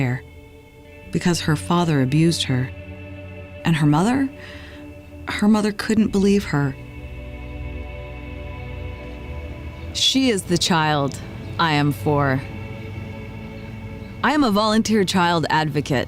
because her father abused her, and her mother couldn't believe her. She is the child I am for. I am a volunteer child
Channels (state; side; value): identical; both; correlation 1.00